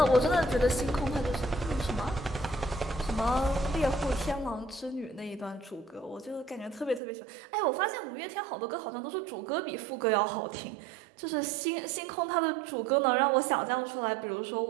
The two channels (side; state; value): left; drops out; at 7.0 s